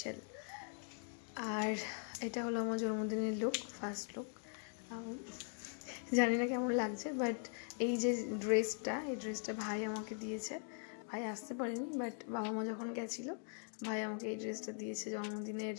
আর এটা হলো আমার জন্মদিনের লুক, ফার্স্ট লুক। জানি না কেমন লাগছে, বাট এই যে ড্রেসটা, এই ড্রেসটা ভাই আমাকে দিয়েছে। ভাই আসতে পারেনি, বাট বাবা মা যখন গেছিলো ভাই আমাকে এই ড্রেসটা দিয়েছে, জন্মদিনের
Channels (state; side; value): silent; right; 50 dB below the other